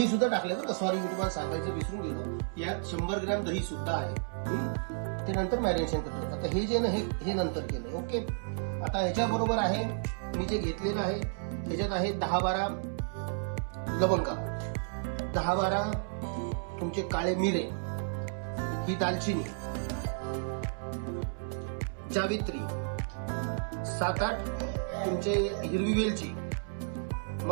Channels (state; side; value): silent; left; 56 dB below the other